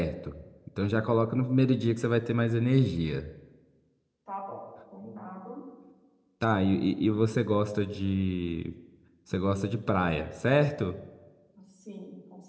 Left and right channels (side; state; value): both; identical; correlation 1.00